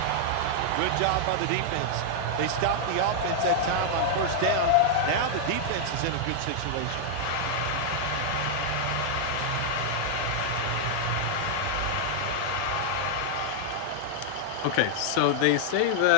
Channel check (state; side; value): different; both; correlation -0.01